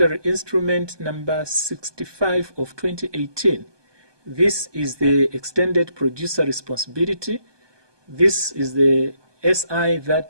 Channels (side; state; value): left; late; 1.2 ms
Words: instrument number 65 of 2018. This is the extended producer responsibility. This is the SI